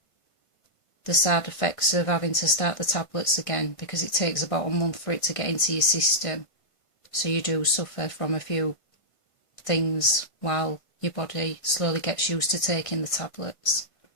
side effects of having to start the tablets again, because it takes about a month for it to get into your system. So you do suffer from a few things while your body slowly gets used to taking the tablets.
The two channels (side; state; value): right; late; 1.6 ms